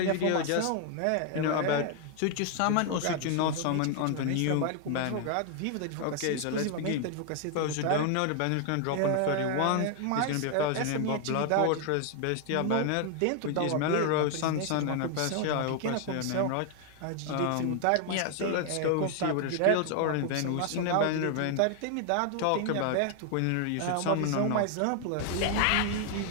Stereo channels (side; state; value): both; different; correlation 0.00